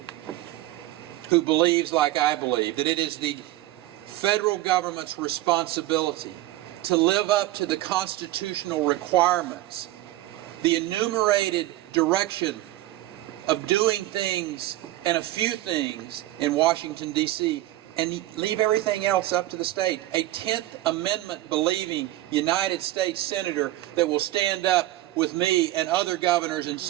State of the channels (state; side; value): quieter; left; 15.7 dB